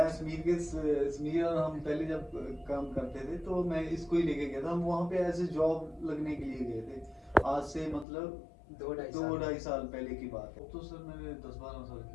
समीर और हम पहले जब काम करते थे तो मैं इसको ही लेके गया था। हम वहाँ पे ऐसे जॉब लगने के लिए गए थे। आज से मतलब 2-2.5 साल पहले की बात है। तो सर मैंने 10-12 साल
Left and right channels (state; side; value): drops out; right; at 8.1 s